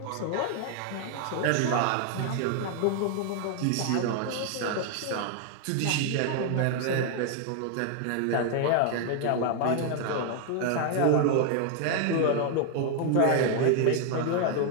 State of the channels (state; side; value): different; both; correlation 0.00